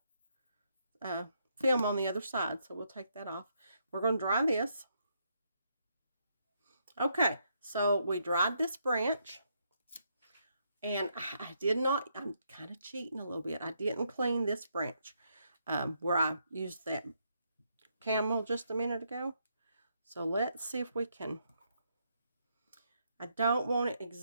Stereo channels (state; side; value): inverted; both; correlation -0.76